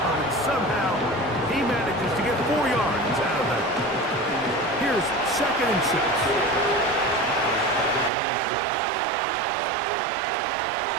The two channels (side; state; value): left; drops out; at 8.1 s